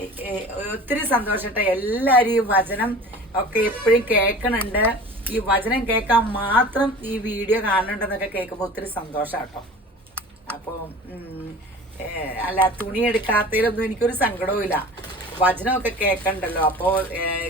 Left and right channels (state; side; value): normal; both; correlation 0.40